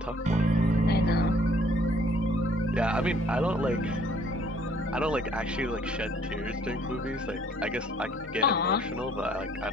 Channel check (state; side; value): normal; both; correlation 0.60